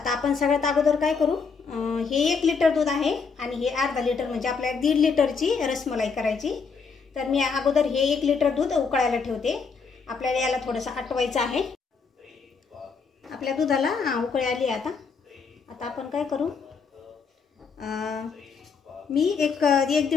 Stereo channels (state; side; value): quieter; right; 5.3 dB